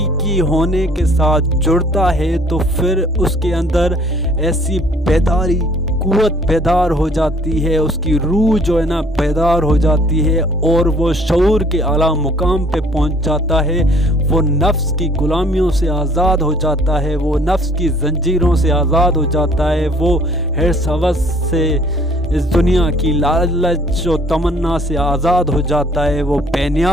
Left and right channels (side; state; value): both; normal; correlation 0.57